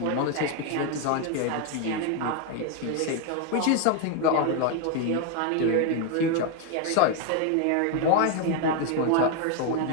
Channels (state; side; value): different; both; correlation 0.01